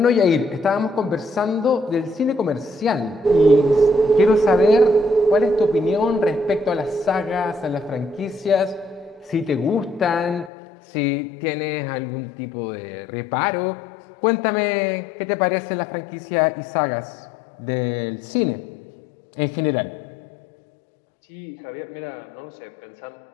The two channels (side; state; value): right; drops out; at 10.5 s